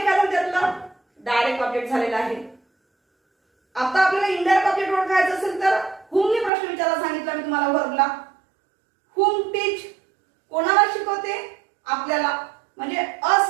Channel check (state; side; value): drops out; left; at 6.5 s